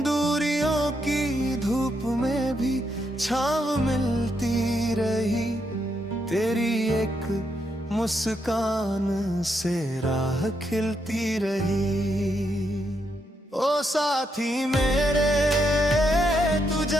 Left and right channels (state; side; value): normal; both; correlation 0.79